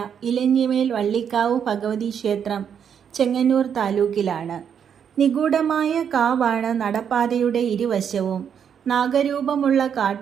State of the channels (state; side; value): quieter; left; 8.0 dB